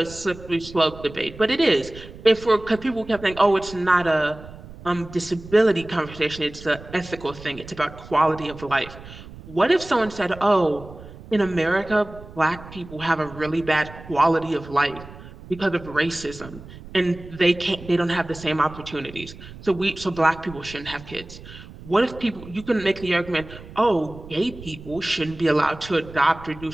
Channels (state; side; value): noise; right; rumble, 16 dB below the sound